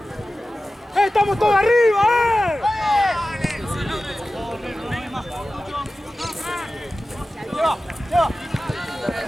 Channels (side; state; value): both; normal; correlation 0.95